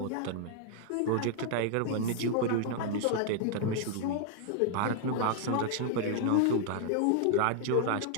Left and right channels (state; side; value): different; both; correlation 0.00